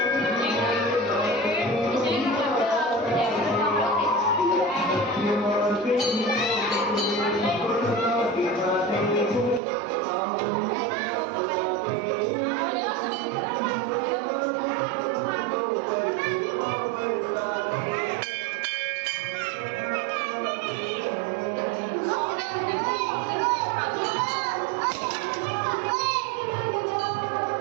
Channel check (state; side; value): drops out; left; at 9.6 s